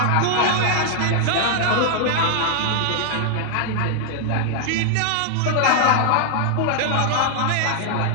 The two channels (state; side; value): different; both; correlation 0.00